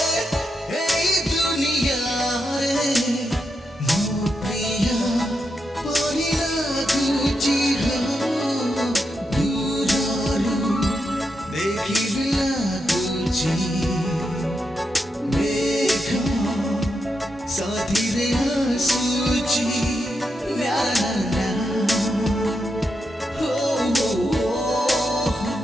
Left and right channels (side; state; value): both; normal; correlation 0.85